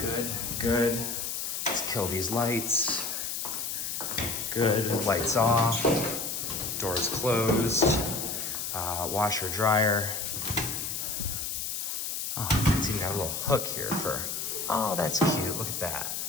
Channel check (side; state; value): left; noise; hiss, 3 dB below the sound